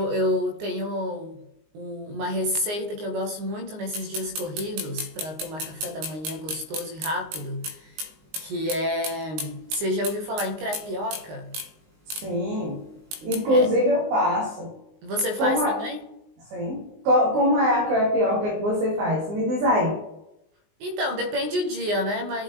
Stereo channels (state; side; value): late; left; 19 ms